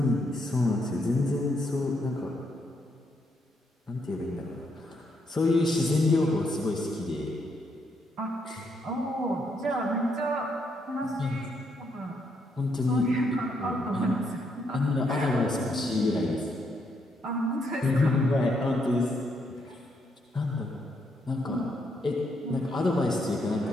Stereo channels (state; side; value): normal; both; correlation 0.76